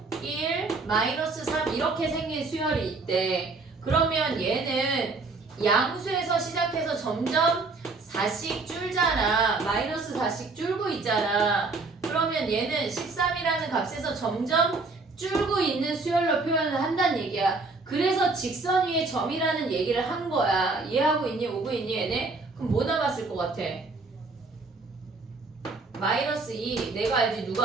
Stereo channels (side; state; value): left; quieter; 3.7 dB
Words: 1, 마이너스 3 이렇게 생긴 수열이 있대. 그러면 얘는 양수에서 시작해서 점점 4씩 줄잖아. 마이너스 4씩 줄고 있잖아. 그러면 얘는 13이라는 값에서 점점 줄고 있는 수열로 표현을 한다는 얘기야. 그래서 직선 위에 점이라는 얘기를 한 거야. 이해하고 있니? 오고 있니 얘네? 그럼 뭐 남았을 것 같아? 마이너스 2 내가 알지